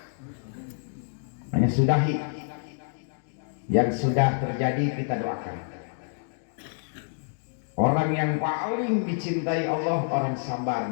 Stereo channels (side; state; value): right; silent; digital silence